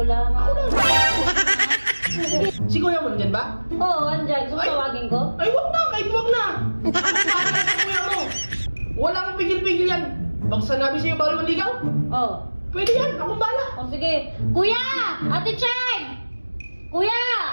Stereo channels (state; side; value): inverted; both; correlation -1.00